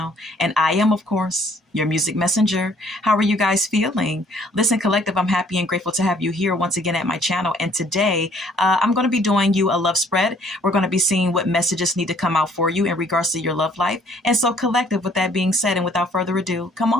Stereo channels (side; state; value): both; normal; correlation 0.61